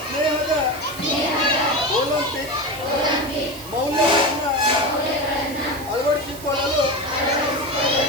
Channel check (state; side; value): noise; right; hiss, 15 dB below the sound